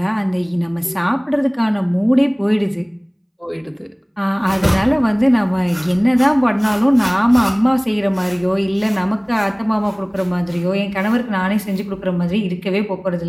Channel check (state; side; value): identical; both; correlation 1.00